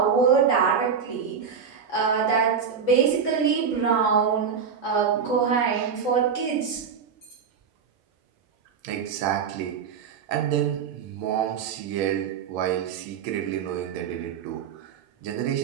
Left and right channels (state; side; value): quieter; left; 6.6 dB